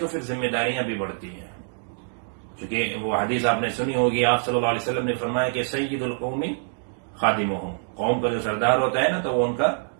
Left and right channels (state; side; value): silent; left; digital silence